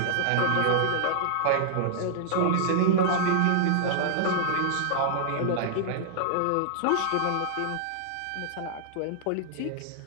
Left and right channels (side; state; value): both; different; correlation -0.01